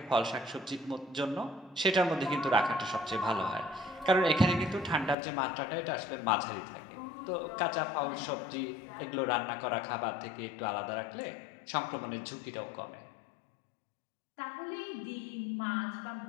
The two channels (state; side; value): drops out; right; at 5.2 s